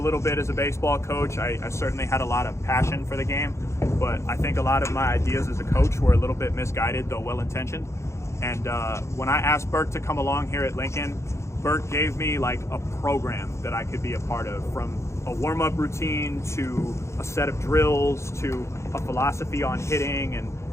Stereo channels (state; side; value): late; right; 0.14 ms